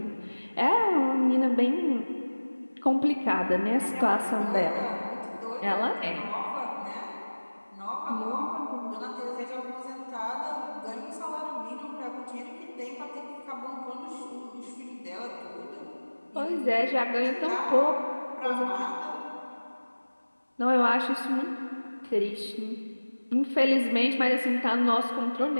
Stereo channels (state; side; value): inverted; both; correlation -1.00